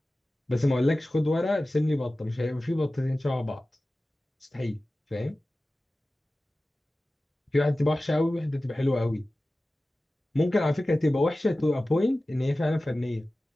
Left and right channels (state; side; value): normal; both; correlation 0.96